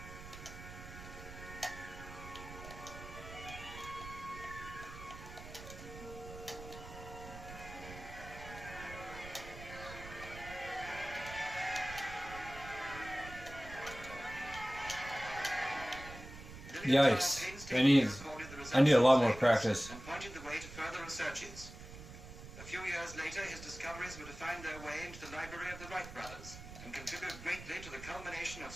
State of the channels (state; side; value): noise; right; rumble, 13 dB below the sound